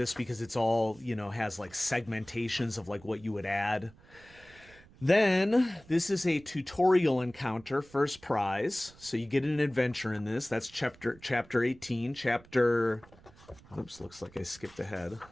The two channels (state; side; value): noise; right; rumble, 24 dB below the sound